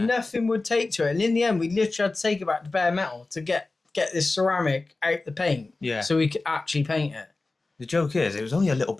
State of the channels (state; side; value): quieter; right; 3.4 dB